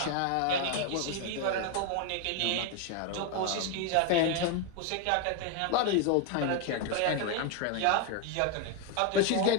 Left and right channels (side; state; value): both; different; correlation 0.01